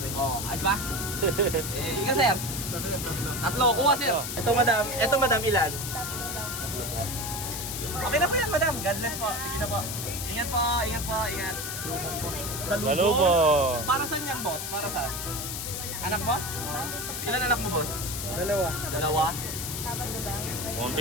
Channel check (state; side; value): noise; left; hiss, 5 dB below the sound